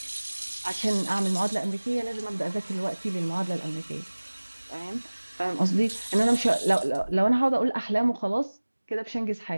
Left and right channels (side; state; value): both; inverted; correlation -1.00